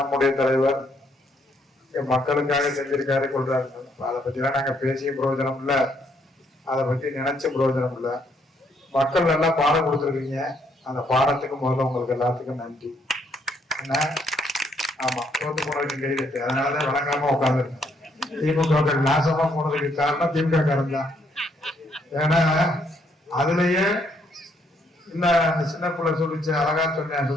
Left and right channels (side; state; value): both; normal; correlation 0.71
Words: தலைவர் மக்களுக்காக செஞ்சிருக்காரு கொள்றாரு. அதை பத்தி எல்லாம் நாங்க பேசிய பிரயோஜனம் இல்ல, அதை பத்தி நினைச்ச பிரயோஜனம் இல்ல. மக்கள் நல்லா பாடம் கொடுத்துருக்கீங்க. அந்த பாடத்துக்கு முதல்ல உங்களுக்கு எல்லாத்துக்கும் நன்றி. என்ன ஆமா, தோத்து போனதுக்கு கைது. அதனாலதான் வழங்காம உட்காந்துருக்கேன். திமுக நாசமா போனதுக்கு காரணம் திமுக காரன் தான். ஏன்னா அதுலயே இல்ல, அந்த சின்ன பிள்ளை சொல்லிச்சு, அழகா சொன்னேன்,